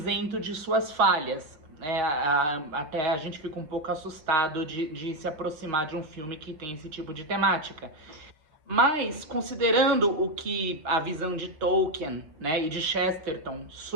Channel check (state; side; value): late; left; 6.3 ms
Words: de suas falhas. Até a gente fica um pouco assustado de se aproximar de um filme que tem esse tipo de temática. Mas, considerando o que a visão de Tolkien, né, e de Chesterton